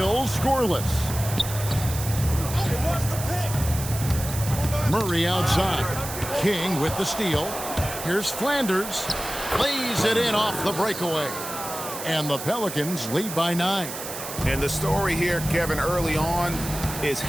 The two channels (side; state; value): right; noise; hiss, 8 dB below the sound